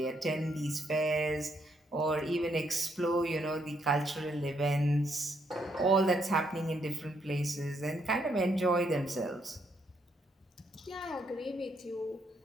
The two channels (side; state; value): both; normal; correlation 0.74